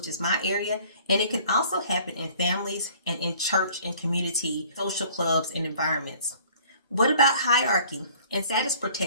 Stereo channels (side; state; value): both; inverted; correlation -0.53